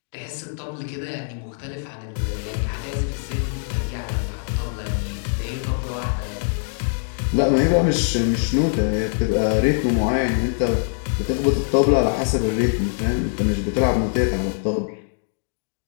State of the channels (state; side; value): silent; right; digital silence